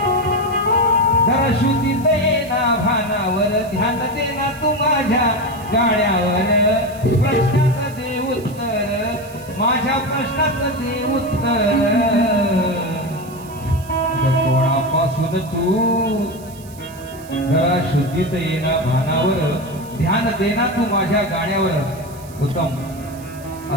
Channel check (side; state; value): right; noise; hiss, 21 dB below the sound